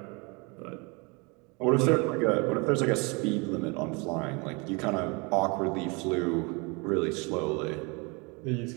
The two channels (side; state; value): left; quieter; 29.6 dB